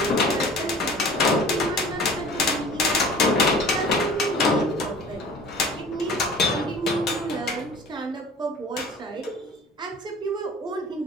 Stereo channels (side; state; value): both; normal; correlation 0.44